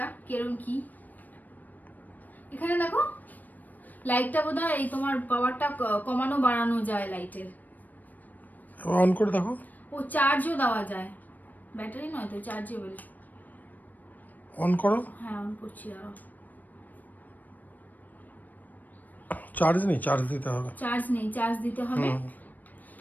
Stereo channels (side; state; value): right; late; 0.084 ms